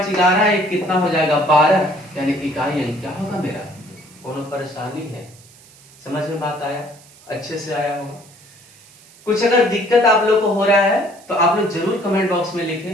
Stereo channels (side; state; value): right; noise; hiss, 25 dB below the sound